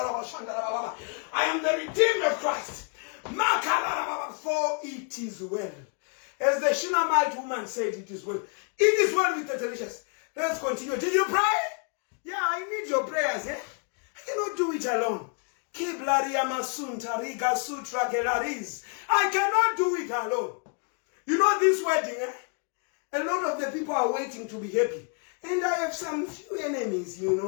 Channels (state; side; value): quieter; right; 38.5 dB